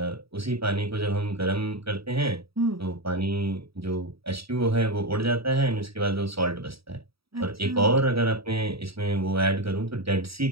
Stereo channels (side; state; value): left; late; 0.76 ms